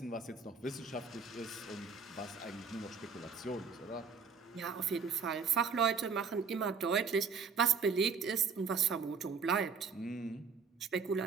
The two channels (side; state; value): left; quieter; 5.6 dB